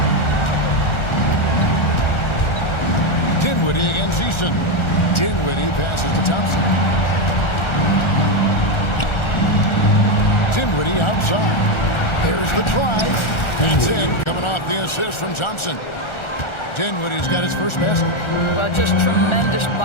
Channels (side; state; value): right; late; 1.4 ms